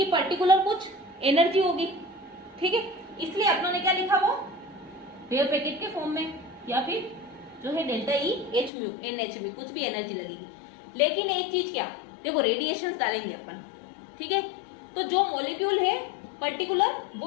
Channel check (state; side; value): drops out; right; at 8.7 s